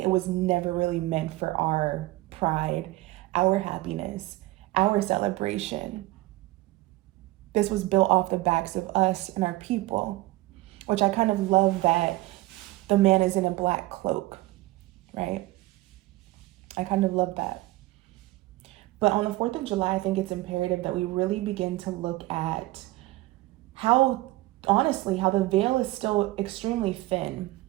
it was never really meant for our pride, our happiness, our celebration. This was built off the backs of us and our people, which I kind of love that the man is in a black cloak, right? I kind of love that. But on the 4th of July, I think it's imperative that we really begin to look at how, honestly, how the veil is still extremely thin.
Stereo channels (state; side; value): quieter; left; 19.0 dB